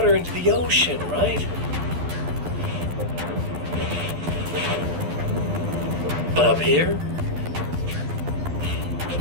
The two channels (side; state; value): left; late; 12 ms